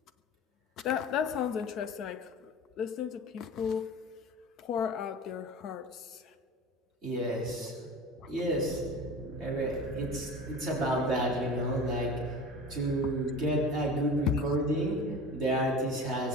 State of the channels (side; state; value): both; normal; correlation 0.36